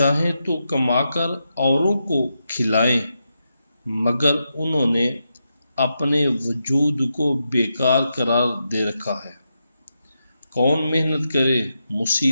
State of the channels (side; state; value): both; inverted; correlation -0.85